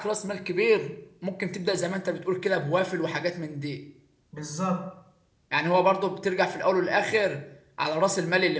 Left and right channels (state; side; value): identical; both; correlation 1.00